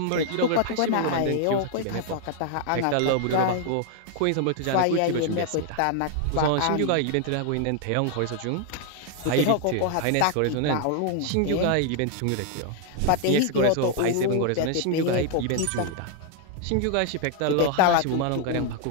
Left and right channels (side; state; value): both; different; correlation 0.00